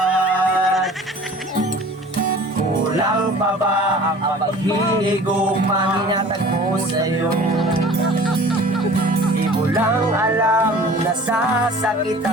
Kulang pa ba ang paghihigugma hinatag mo sa'yo? Di mo lang alam na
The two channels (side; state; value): both; normal; correlation 0.45